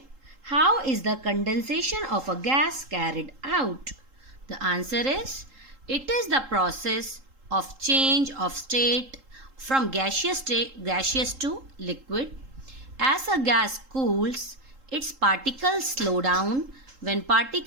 How is the condensation of a gas carried out? The answer is it is the process of change of state from gaseous to liquid. As a gas cools, its particles slow down. When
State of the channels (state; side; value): late; left; 3.8 ms